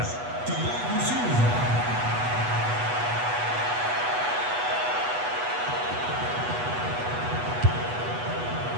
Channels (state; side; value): late; left; 8.2 ms